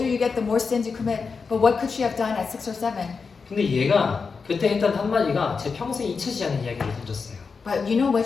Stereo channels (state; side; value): quieter; right; 5.1 dB